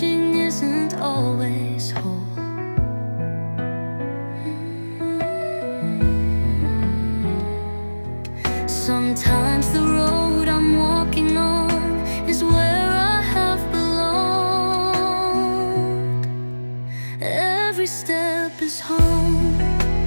isn't always whole. Sometimes the road I'm walking on is where I have belonged. Every step is home,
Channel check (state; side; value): inverted; both; correlation -1.00